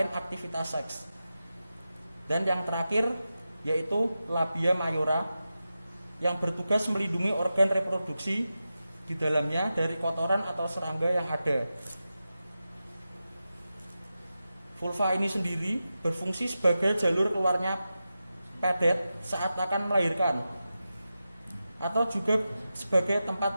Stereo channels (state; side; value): inverted; both; correlation -0.92